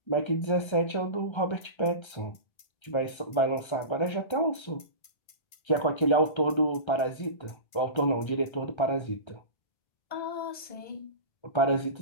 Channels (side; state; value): right; late; 1.3 ms